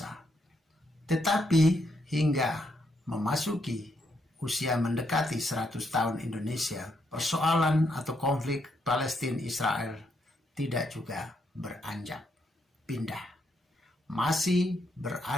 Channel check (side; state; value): both; normal; correlation 0.77